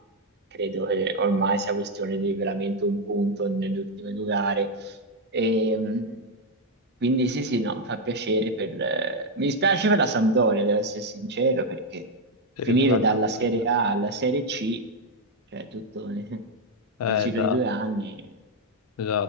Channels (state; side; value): normal; both; correlation 0.02